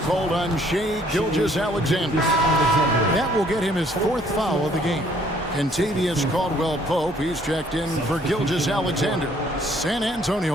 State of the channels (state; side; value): normal; both; correlation 0.62